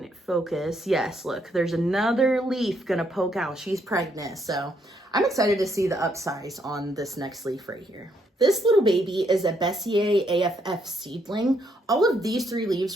focus, yes, look, there's another leaf gonna poke out. She's pregnant, so I'm excited to see the upsize on this next leaf right here. This little baby is a Bessier AFF seedling. All of these 3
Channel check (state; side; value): normal; both; correlation 0.73